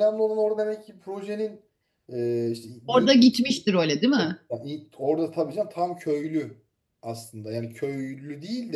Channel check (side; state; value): both; identical; correlation 1.00